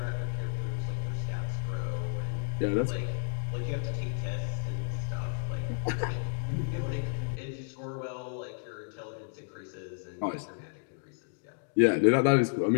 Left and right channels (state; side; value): silent; right; digital silence